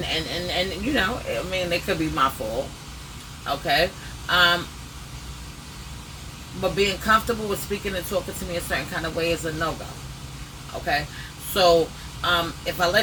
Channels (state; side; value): identical; both; correlation 1.00